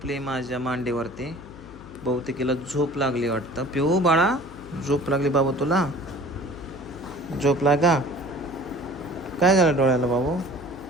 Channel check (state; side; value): noise; left; hum, 17 dB below the sound